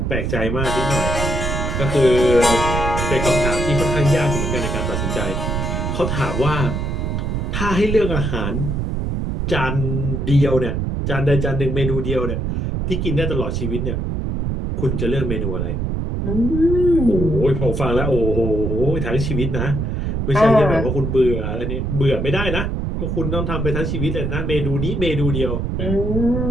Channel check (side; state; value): right; noise; rumble, 1 dB below the sound